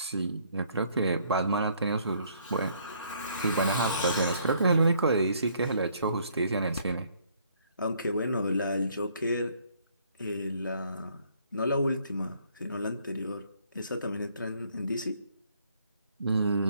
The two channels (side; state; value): both; inverted; correlation -0.64